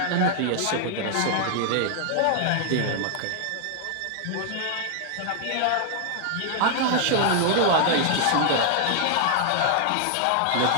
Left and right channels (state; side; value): different; both; correlation 0.00